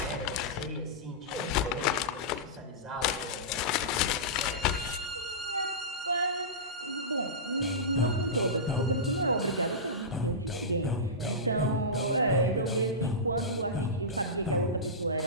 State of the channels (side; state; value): both; normal; correlation -0.17